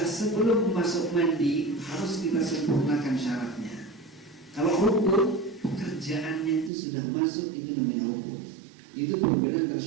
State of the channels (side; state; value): left; drops out; at 6.7 s